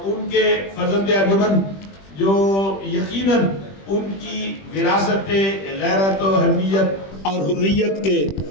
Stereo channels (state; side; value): late; right; 21 ms